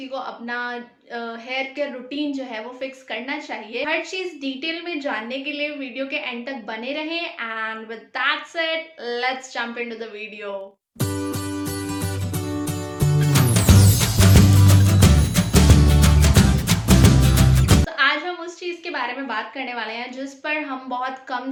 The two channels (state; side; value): identical; both; correlation 1.00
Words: को अपना हेयर केयर रूटीन जो है वो फिक्स करना चाहिए। हर चीज डिटेल में जानने के लिए वीडियो के एंड तक बने रहें and with that said let's jump into the video. तो आज हम उस चीज़ के बारे में बात करने वाले हैं जिस पर हम बहुत कम